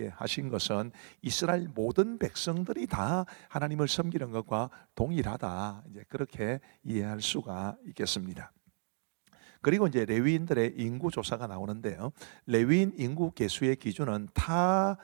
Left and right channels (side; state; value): left; silent; 56 dB below the other